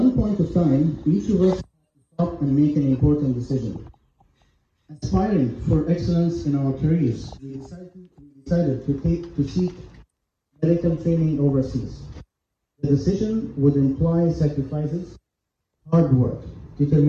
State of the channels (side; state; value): both; identical; correlation 1.00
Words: point of time, each of us had to stop and make an important decision. Aspiring for excellence in our careers, we decided to seek medical training overseas. The decision would imply sacrifices, hard work,